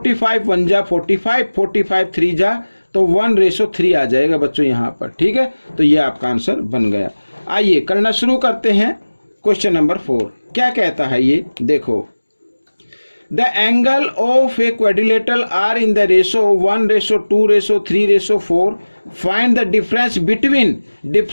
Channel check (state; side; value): inverted; both; correlation -1.00